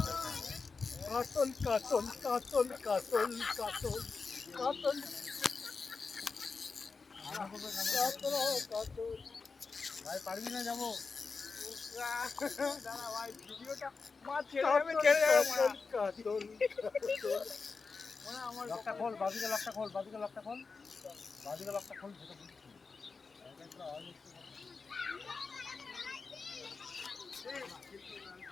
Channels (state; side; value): quieter; right; 4.6 dB